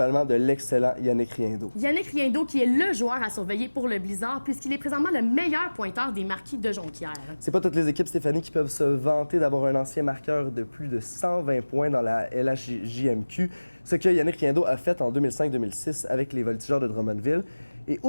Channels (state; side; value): inverted; both; correlation -1.00